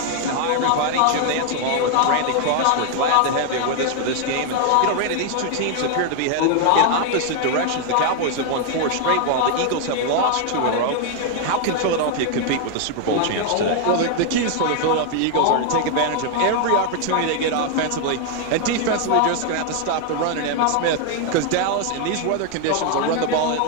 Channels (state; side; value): different; both; correlation 0.00